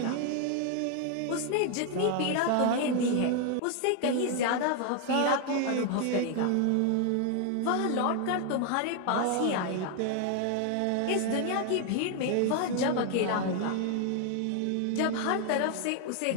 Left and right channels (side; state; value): both; different; correlation 0.00